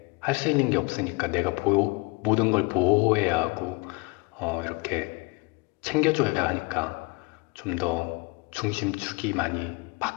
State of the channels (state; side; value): quieter; right; 28.3 dB